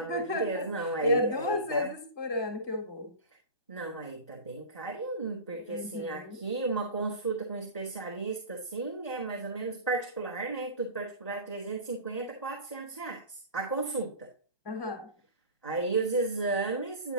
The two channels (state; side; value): late; right; 1.2 ms